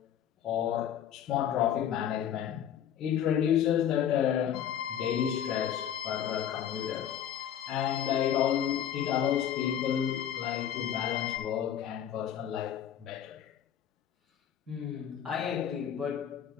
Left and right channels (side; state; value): right; quieter; 9.7 dB